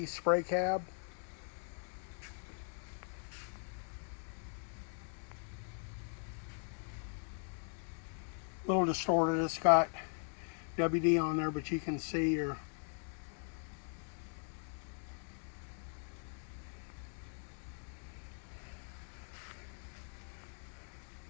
spray cab. A little distorted. It's got WD on there, but you can see your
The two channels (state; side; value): silent; right; 51 dB below the other